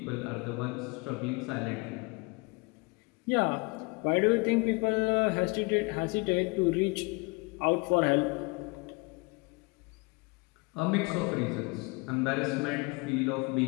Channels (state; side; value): quieter; right; 28.1 dB